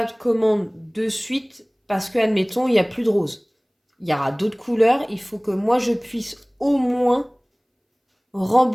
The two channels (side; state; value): both; identical; correlation 1.00